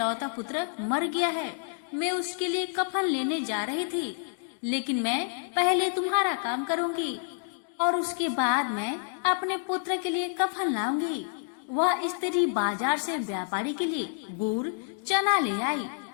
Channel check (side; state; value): right; silent; digital silence